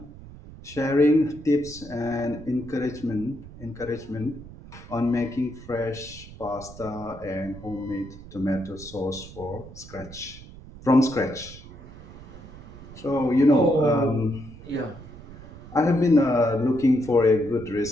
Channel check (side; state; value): right; noise; rumble, 17 dB below the sound